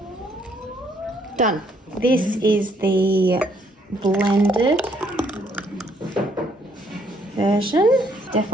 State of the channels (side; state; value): both; normal; correlation 0.68